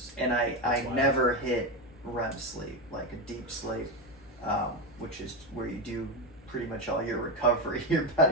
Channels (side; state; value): both; normal; correlation 0.14